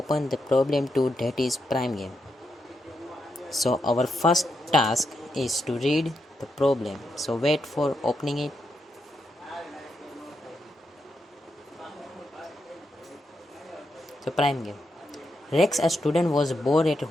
the problem 2, that is prime game. So our first task is to read the problem. So wait for opening it. So prime game. Rex, a student, was bored at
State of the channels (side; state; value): both; normal; correlation 0.83